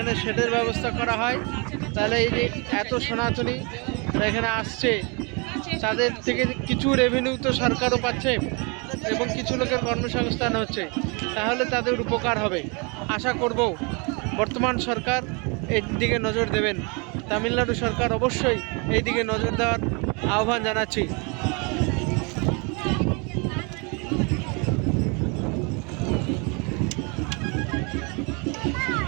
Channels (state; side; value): quieter; left; 31.7 dB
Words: শেডের ব্যবস্থা করা হয় তাহলে এই যে এত সনাতনী এখানে আসছে তাদের থেকে কিছু রেভিনিউ তো সরকারও পাচ্ছে এবং কিছু লোকের কর্মসংস্থান হচ্ছে, তাহলে তাদের উপকার হবে। আশা করব বর্তমান সরকার এই দিকে নজর দেবেন। তামিলনাড়ু সরকার অবশ্যই এই দিকে নজর দেওয়ার আহ্বান জানাচ্ছি।